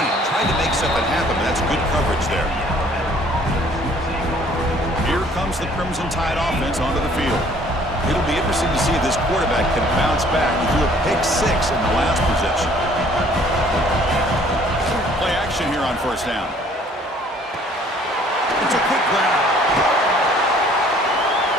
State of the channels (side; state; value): both; normal; correlation 0.57